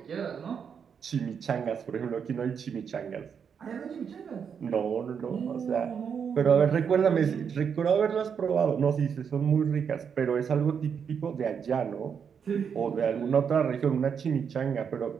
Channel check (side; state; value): left; quieter; 7.0 dB